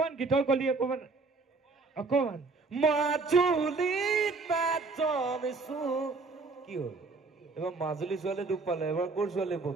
গীতৰ কলি অকমান। মাজুলী তাত জন্মিছো কি হ'ল এবাৰ মাজুলী ছোৱালী দুখ পালে এবাৰ ক'ৰ ছোৱালী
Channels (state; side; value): quieter; left; 3.9 dB